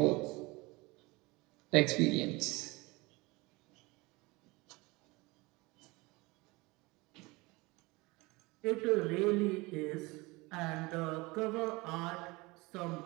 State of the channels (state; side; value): quieter; left; 23.8 dB